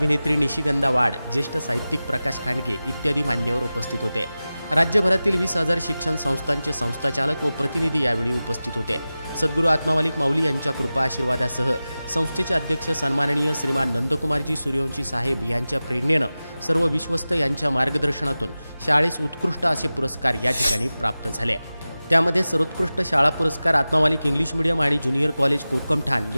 निशिगंधा वाड, ज्येष्ठ साहित्यिक प्रकाश खांडगे इत्यादी मान्यवर उपस्थित होते। राज्यभरातील 20,000 शिक्षण संस्थांचे संस्थाचालक व प्रतिनिधी यावेळी उपस्थित होते। सद्गुरू आत्मामालिक माऊली यांच्या कृपा आशीर्वादासह संस्थेचे अध्यक्ष सन्माननीय श्रीमान नंदकुमारजी सूर्यवंशी साहेब यांच्या प्रेरणेने सर्व विश्वस्त यांच्या मार्गदर्शनातून शाळेस उत्कृष्ट असे पुरस्कार या ठिकाणी प्राप्त झाले। त्यामध्ये सर्वोत्कृष्ट शाळा पुरस्कार आत्मामालिक इंग्लिश मीडियम आणि ज्युनियर कॉलेज कोकमठाण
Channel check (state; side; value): inverted; both; correlation -0.96